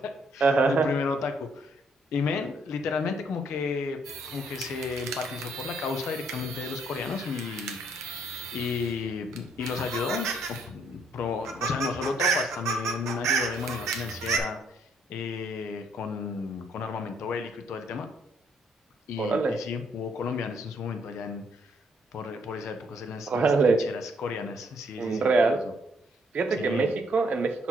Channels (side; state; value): both; normal; correlation 0.69